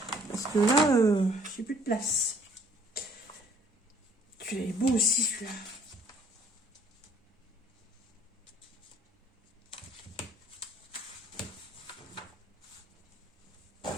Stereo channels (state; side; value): normal; both; correlation 0.59